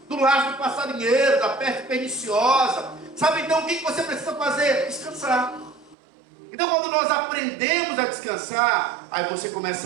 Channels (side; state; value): left; drops out; at 6.0 s